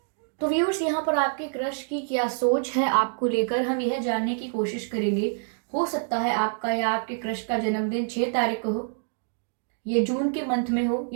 तो व्यूअर्स, यहाँ पर आपके क्रश की क्या सोच है आपको लेकर, हम यह जानने की कोशिश करेंगे। हो सकता है आपका या आपके क्रश का जन्मदिन 6 तारीख को हो, ये जून के मंथ में हो,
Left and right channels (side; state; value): left; silent; digital silence